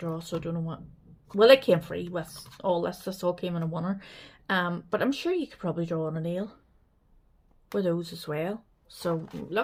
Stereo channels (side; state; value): both; identical; correlation 1.00